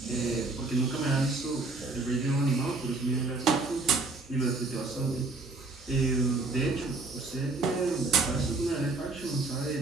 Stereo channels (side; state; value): left; quieter; 3.5 dB